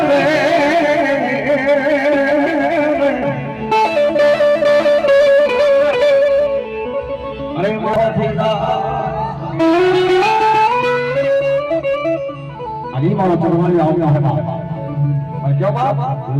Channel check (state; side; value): identical; both; correlation 1.00